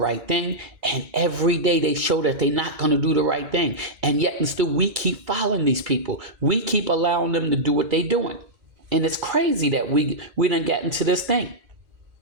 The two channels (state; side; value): late; left; 3.0 ms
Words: thing. And every day they show that they're not going to do the right thing. And yet and still we keep following these people. We keep allowing them to do what they're doing. And it's crazy that we done get into this thing.